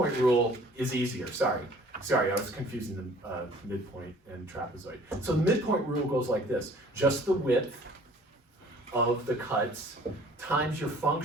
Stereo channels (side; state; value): both; normal; correlation 0.53